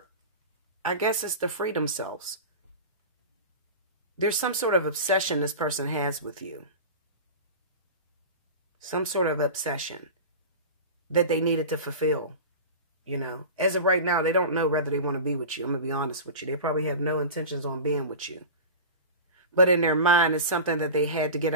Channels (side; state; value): both; inverted; correlation -0.30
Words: I guess it's to free themselves. There's some sort of obsession this person has with you. Some sort of obsession that they needed to fulfill. You know, as of right now, they don't know whether they want to be with you. I'm going to be honest with you. They probably have no intentions on being with you. But in their mind, it's something that they had to get